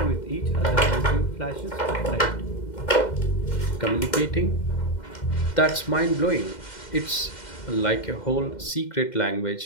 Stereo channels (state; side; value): late; right; 2.1 ms